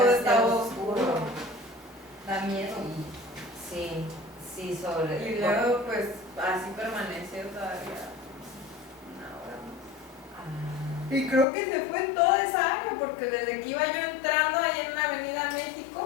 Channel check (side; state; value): right; drops out; at 11.5 s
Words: estaba oscuro. Da miedo. Sí, sí, sobre. Y luego pues así permaneció todavía una hora más. Ah, Y creo que se fue en toda esa área, porque desde que iba yo entrando ahí en la Avenida